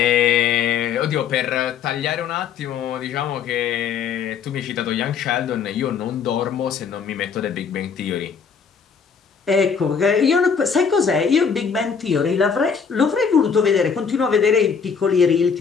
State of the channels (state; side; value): quieter; right; 6.4 dB